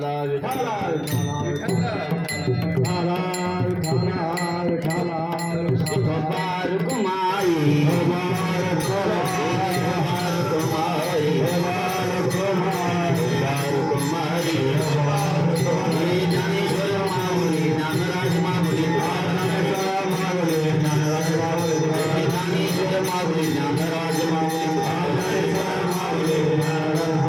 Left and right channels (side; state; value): both; identical; correlation 1.00